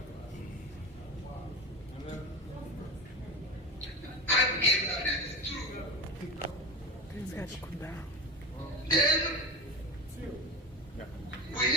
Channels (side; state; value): both; normal; correlation 0.23